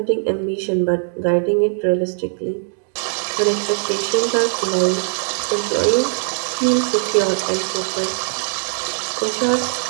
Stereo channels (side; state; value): left; silent; digital silence